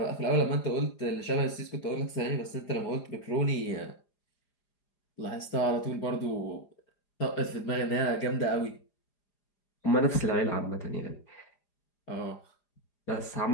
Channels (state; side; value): late; right; 4.9 ms